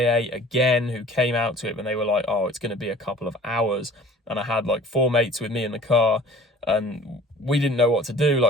again, who came out to it, and they were like, oh, it's going to be a couple of hours. And I had like 4 mates with me in the car, and we didn't know what to do.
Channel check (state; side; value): normal; both; correlation 0.47